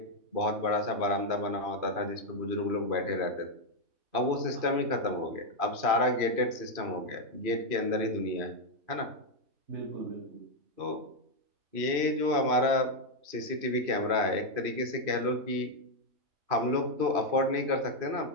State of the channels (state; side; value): late; left; 2.5 ms